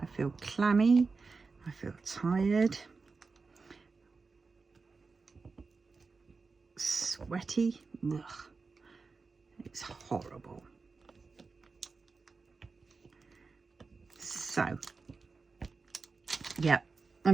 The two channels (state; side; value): quieter; left; 4.4 dB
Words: feel clammy, I feel tired, sweaty. Ugh. It's horrible. So, yeah,